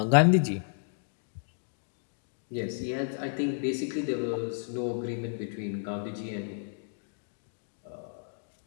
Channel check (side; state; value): right; silent; digital silence